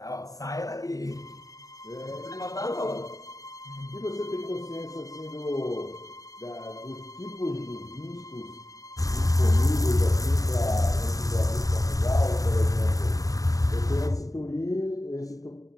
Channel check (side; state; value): right; late; 0.17 ms